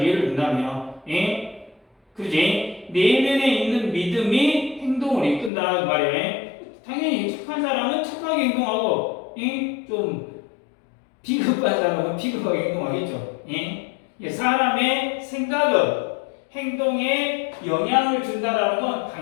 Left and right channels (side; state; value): right; drops out; at 5.5 s